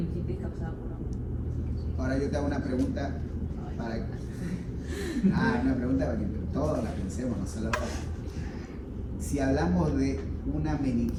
causada por hongos. Ahora yo te hago una pregunta para una pregunta para que todos la pensemos, no solo si hablamos de una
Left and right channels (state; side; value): identical; both; correlation 1.00